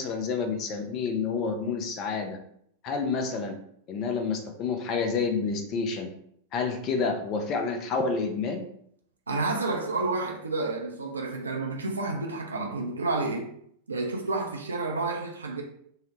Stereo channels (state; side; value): normal; both; correlation -0.14